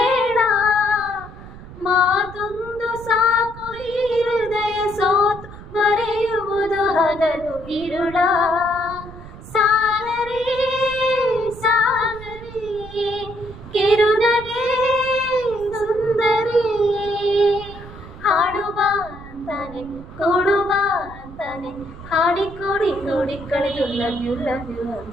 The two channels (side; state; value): right; noise; rumble, 15 dB below the sound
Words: ಮಾತೊಂದು ಸಾಕು ಈ ಹೃದಯ ಸೋತು ಮರೆಯುವುದು ಹಗಲು ಇರುಳ. ಸಾಗರಿ ಸಾಗರಿ ಕಿರುನಗೆ ಸುಂದರಿ, ಹಾಡುವ ಅಂತಾನೆ ಕೊಡುವ ಅಂತಾನೆ, ಹಾಡಿಕೊಡಿ ನೋಡಿ ಕಳೆದು ಲವ್ ಯು